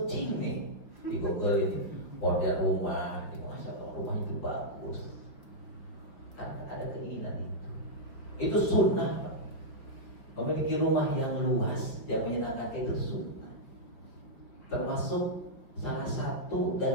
nih di Google ini model rumah, masa rumah itu bagus. Ada keinginan itu sunnah. Memiliki rumah yang luas yang menyenangkan itu sunnah. Termasuk salah satu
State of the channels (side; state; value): right; late; 5.2 ms